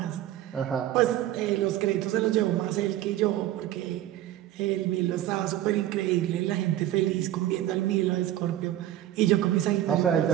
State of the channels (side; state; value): left; quieter; 13.2 dB